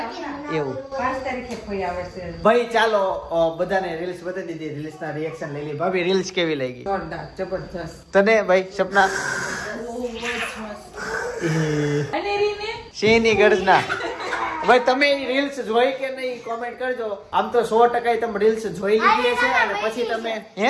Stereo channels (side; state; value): both; identical; correlation 1.00